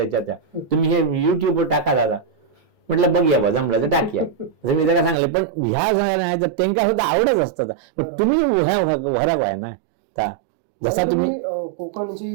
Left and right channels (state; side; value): drops out; left; at 5.2 s